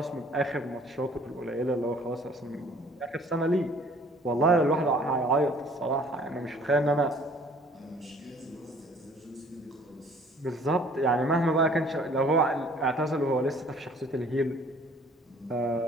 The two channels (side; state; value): both; normal; correlation 0.54